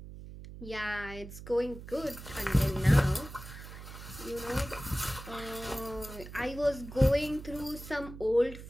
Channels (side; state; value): right; noise; hum, 13 dB below the sound